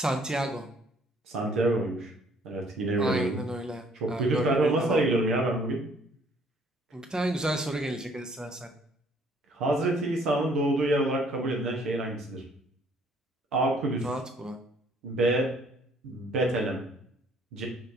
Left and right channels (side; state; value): both; normal; correlation 0.61